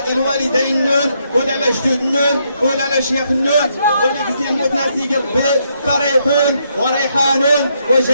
الوالدين النون ولا الجدود النون ولا الشيخ النون واللي كيزيد يموت ناس يجي ربي فريحون وريحان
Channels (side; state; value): both; inverted; correlation -0.76